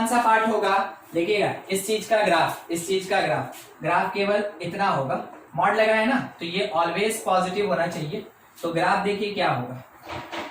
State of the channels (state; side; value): identical; both; correlation 1.00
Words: सा पार्ट होगा, देखिएगा इस चीज का ग्राफ केवल इतना होगा, मॉड लगा है ना, तो ये ऑलवेज पॉजिटिव होना चाहिए। तो ग्राफ देखिए क्या होगा,